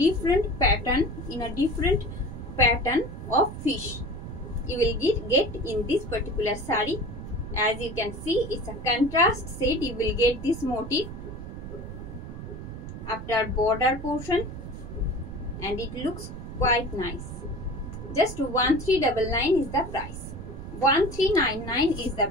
different pattern of fish you will get in this particular saree. As you can see, it's a contrast set. You will get this motif after border portion, and it looks quite nice. Just 1399 is the price. 1399 is the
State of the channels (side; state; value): right; noise; rumble, 9 dB below the sound